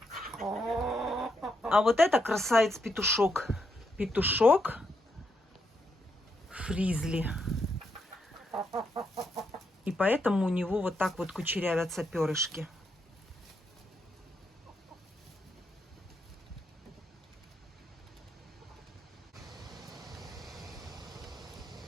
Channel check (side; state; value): both; normal; correlation 0.79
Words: А вот это красавец-петушок. Петушок фризли. И поэтому у него вот так вот кучерявятся перышки.